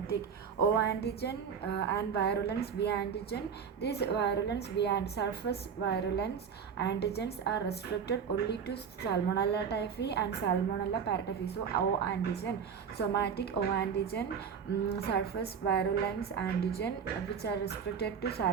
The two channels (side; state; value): left; quieter; 6.8 dB